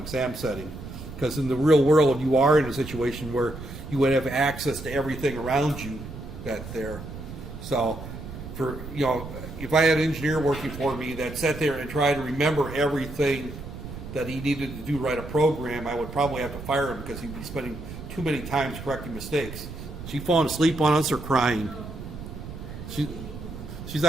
setting. Because in the real world, you are in a situation where you would have access to everything around you that there. So, if I had an engineer working for me that sat there and tried to remember everything that he needed to do write a program, I would probably have to fire him because he'd be spending too many times correcting mistakes. She falling asleep on us or crying? She's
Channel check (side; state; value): right; noise; rumble, 11 dB below the sound